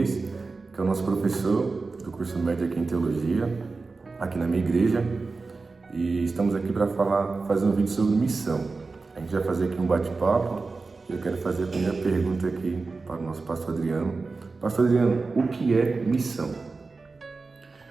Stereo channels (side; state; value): left; quieter; 4.0 dB